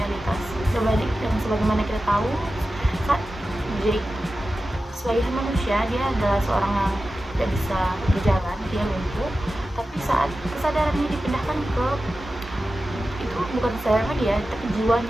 Sebagaimana kita tahu, saat Jake sebagai manusia, dia adalah seorang yang tidak bisa berjalan, dia lumpuh, tapi saat kesadarannya dipindahkan ke, itu bukan kesadarannya dia, tapi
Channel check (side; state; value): both; normal; correlation 0.93